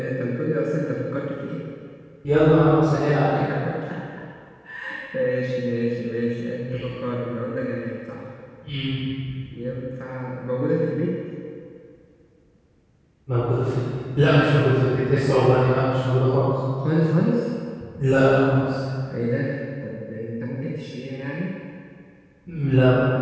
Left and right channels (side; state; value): both; identical; correlation 1.00